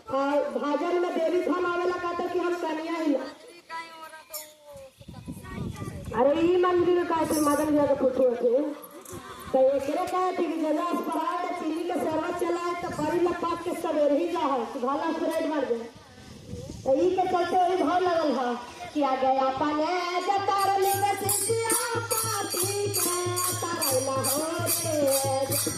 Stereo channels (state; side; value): identical; both; correlation 1.00